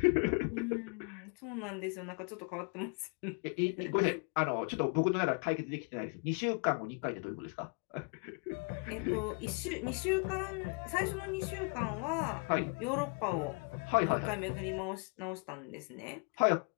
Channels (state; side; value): quieter; right; 36.5 dB